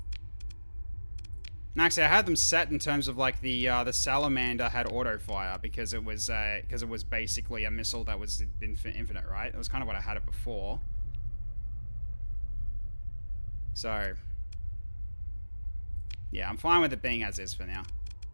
And actually, I had them set in terms of like the salamander had auto fire because it was basically a missile that was infinite, right? It was kind of what I had it before. So, yeah, I'm fine with it being as is for now.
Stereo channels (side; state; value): both; inverted; correlation -1.00